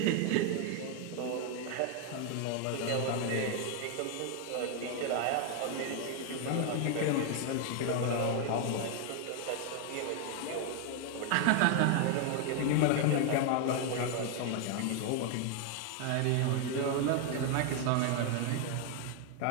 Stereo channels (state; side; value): different; both; correlation 0.01